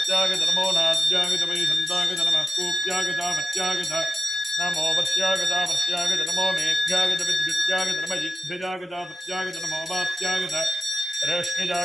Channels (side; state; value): both; normal; correlation 0.93